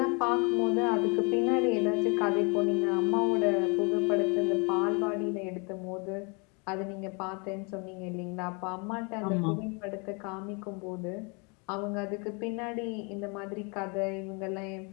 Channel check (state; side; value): quieter; right; 32.6 dB